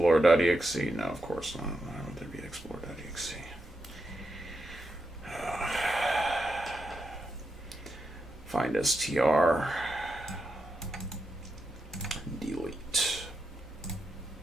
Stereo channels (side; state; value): both; normal; correlation 0.85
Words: No, of course not. Why would there be Explorer.exe? Find str. Delete.